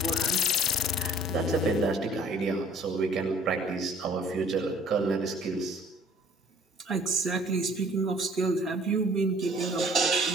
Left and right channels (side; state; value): both; normal; correlation 0.55